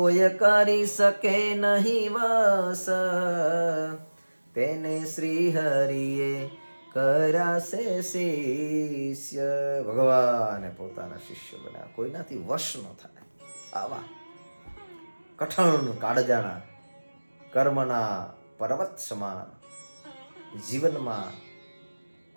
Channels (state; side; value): inverted; both; correlation -1.00